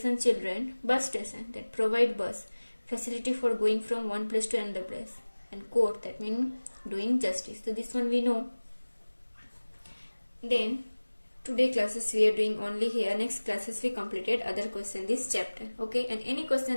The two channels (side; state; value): both; inverted; correlation -1.00